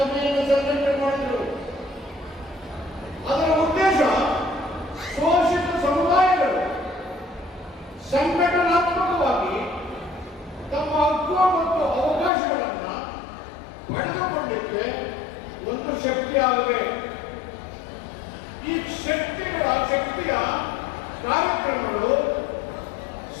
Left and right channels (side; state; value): right; drops out; at 12.3 s